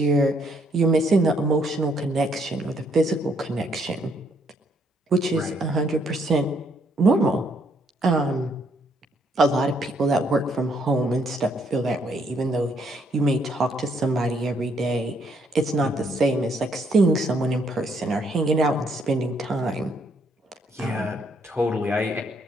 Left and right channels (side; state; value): both; normal; correlation 0.71